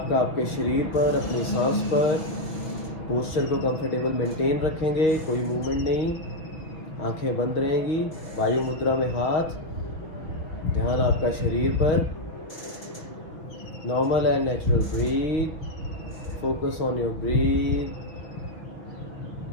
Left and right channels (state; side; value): late; right; 6.3 ms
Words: आपके शरीर पर, अपनी सांस पर। पोस्चर को कंफर्टेबल मेंटेन रखेंगे, कोई मूवमेंट नहीं, आंखें बंद रहेंगी, वायु मुद्रा में हाथ। ध्यान आपका शरीर पर। Normal and natural breath. Focus on your breath,